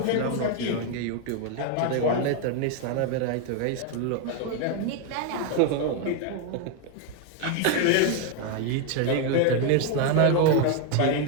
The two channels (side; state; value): both; different; correlation 0.01